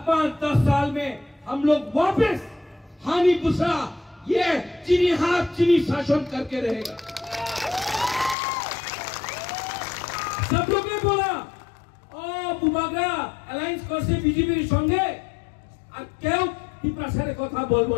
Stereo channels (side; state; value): right; drops out; at 8.3 s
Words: 5-10 साल में हम लोग वापस हानि पुसा, ये चीनी हाथ चीनी शासन करके रहेगा। सब लोग ने बोला ओ बुमाग्रा अलायंस करছে বিজেপির সঙ্গে, আর কেউ টিপ্রাসারে কথা বলবো